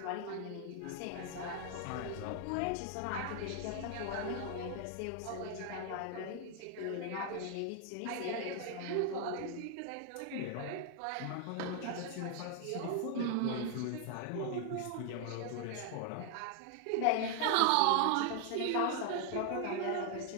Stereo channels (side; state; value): both; different; correlation 0.00